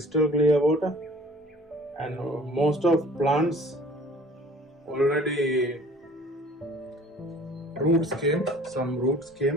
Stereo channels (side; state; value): both; normal; correlation 0.50